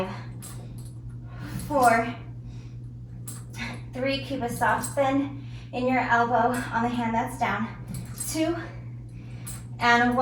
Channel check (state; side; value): identical; both; correlation 1.00